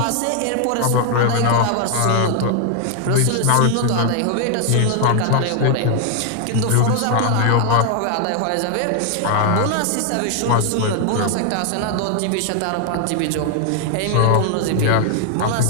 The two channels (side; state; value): both; different; correlation 0.00